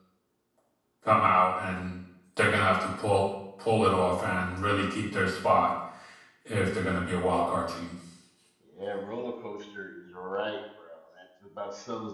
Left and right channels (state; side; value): identical; both; correlation 1.00